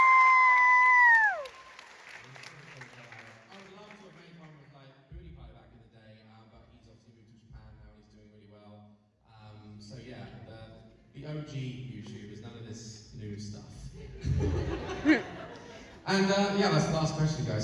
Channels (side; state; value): both; identical; correlation 1.00